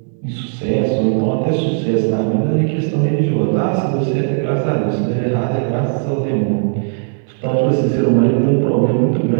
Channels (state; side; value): silent; left; digital silence